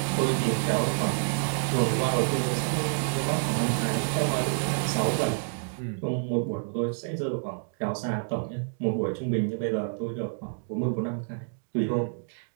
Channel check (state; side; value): silent; left; digital silence